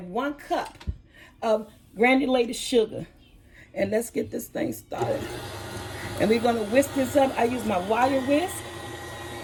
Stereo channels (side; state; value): both; identical; correlation 1.00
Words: 1 cup of granulated sugar. And let's get this thing started. And we're going to whisk this up. I use my wire whisk.